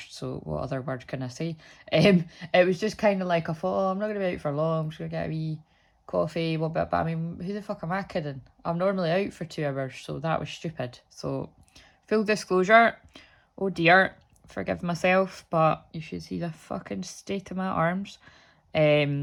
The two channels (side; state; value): both; identical; correlation 1.00